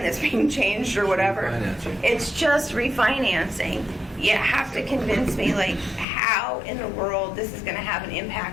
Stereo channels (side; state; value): right; drops out; at 6.1 s